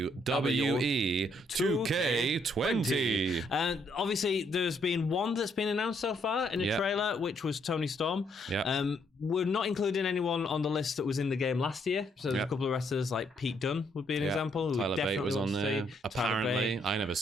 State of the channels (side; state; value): both; normal; correlation 0.72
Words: 2K20. And obviously there's been one that's been announced so far in a trailer, which was Tony Storm. We're not including anyone on the list that was in the game last year. So there's a couple of wrestlers like Pete Dunne would be an example. Tyler Bate was on there. Apparently, I never